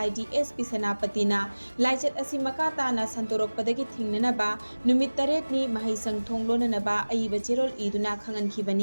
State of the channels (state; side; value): inverted; both; correlation -1.00